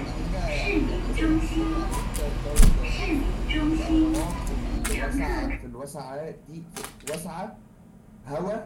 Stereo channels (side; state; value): both; identical; correlation 1.00